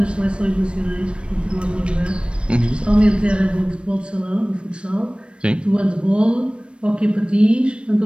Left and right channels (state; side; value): late; left; 0.058 ms